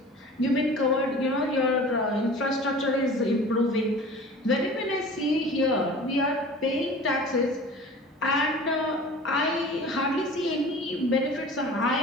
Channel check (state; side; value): normal; both; correlation 0.41